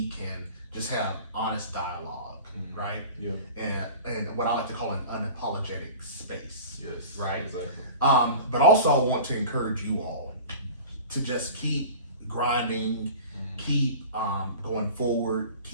can just have honest dialogue. Right? And what I like to call an unapologetic space. Right? Exactly. But also I want to encourage you all to just keep grinding, keep going forward,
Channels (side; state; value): both; inverted; correlation -0.39